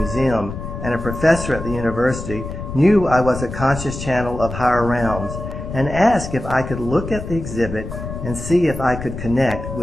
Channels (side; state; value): left; noise; rumble, 8 dB below the sound